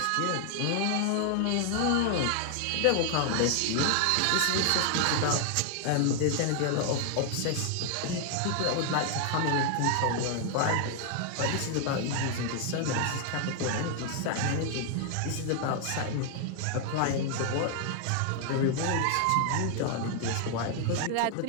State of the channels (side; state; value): both; different; correlation 0.00